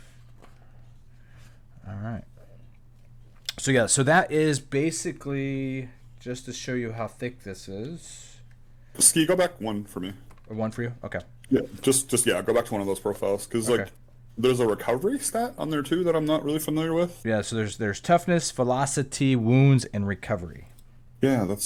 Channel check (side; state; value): both; identical; correlation 1.00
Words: All right. So that is basically just to show you how thick this is. Ski, go back one for me. Or one for you? Okay. Yeah, just go back to one of those profiles because Okay. like there's a recovery stat on there too that I'm not really familiar with. Yeah, so there's toughness, velocity, wounds, and recovery. Yeah,